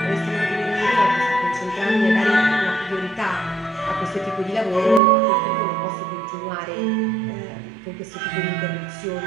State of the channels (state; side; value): drops out; left; at 5.0 s